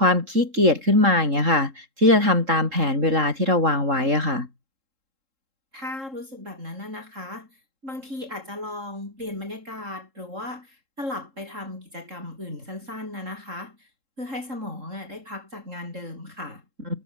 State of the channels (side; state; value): left; late; 3.7 ms